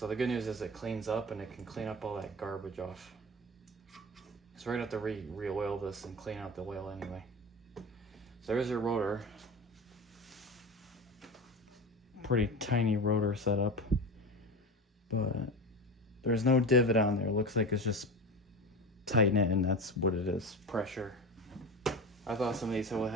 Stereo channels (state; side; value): normal; both; correlation 0.28